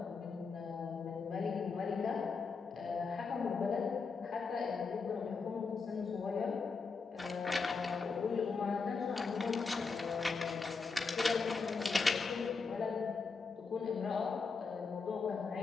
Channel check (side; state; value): right; quieter; 4.7 dB